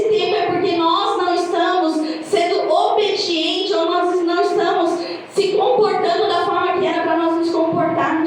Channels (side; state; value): both; identical; correlation 1.00